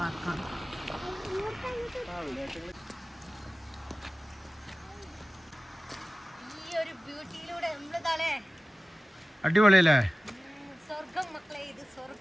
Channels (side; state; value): both; normal; correlation 0.97